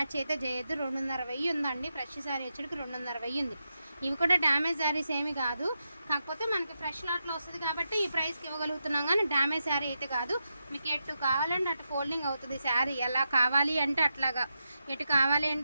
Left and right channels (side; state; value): both; inverted; correlation -0.87